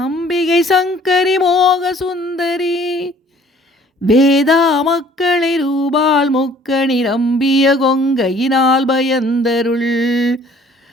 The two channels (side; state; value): both; normal; correlation 0.55